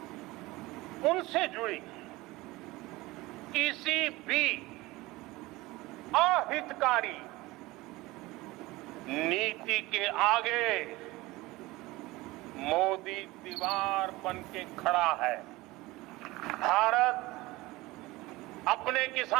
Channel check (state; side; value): quieter; left; 20.3 dB